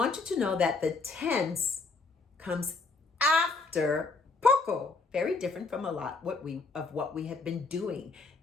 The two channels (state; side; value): quieter; right; 3.9 dB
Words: you to know that the tense comes after POKO. Very different from a lot of what we have been doing.